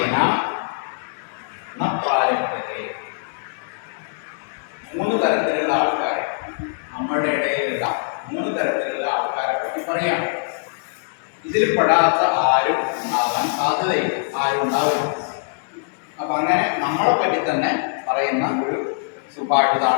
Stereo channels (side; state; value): right; silent; digital silence